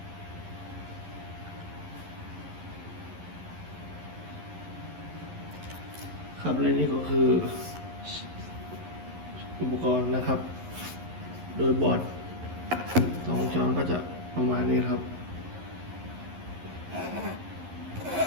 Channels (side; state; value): left; late; 11 ms